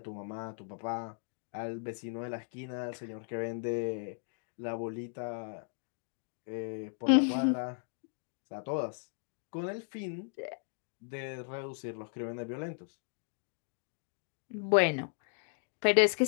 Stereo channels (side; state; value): right; silent; 54 dB below the other